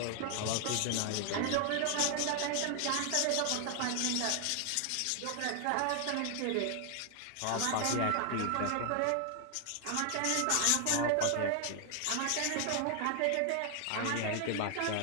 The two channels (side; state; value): both; different; correlation 0.00